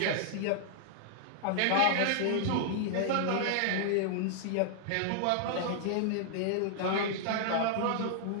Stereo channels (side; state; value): both; different; correlation -0.01